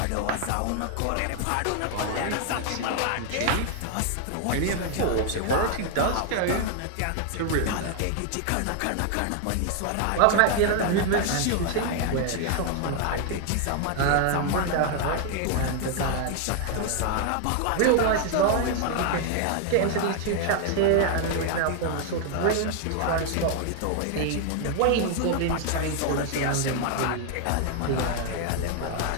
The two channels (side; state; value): both; different; correlation 0.00